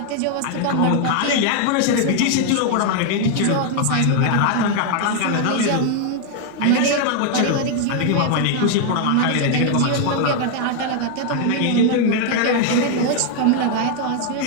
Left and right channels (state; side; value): different; both; correlation 0.00